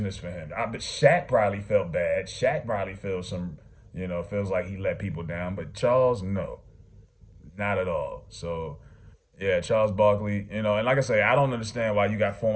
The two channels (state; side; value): identical; both; correlation 1.00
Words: for him. I bet Shaq probably felt bad. Shaq probably feels feels like he let people down, but Charles, no, not at all. So yeah, Charles Barkley, and like I say, I don't understand why you got